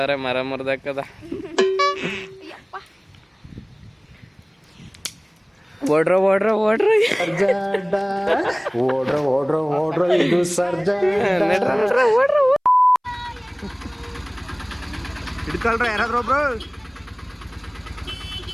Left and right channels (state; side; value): identical; both; correlation 1.00